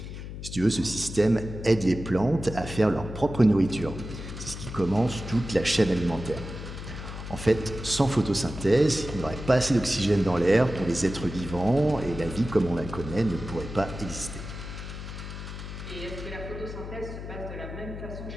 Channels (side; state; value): left; noise; hum, 9 dB below the sound